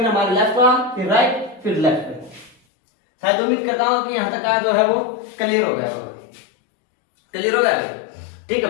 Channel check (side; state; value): right; drops out; at 2.6 s